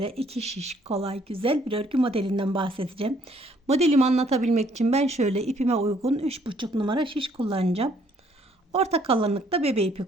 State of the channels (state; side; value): normal; both; correlation 0.64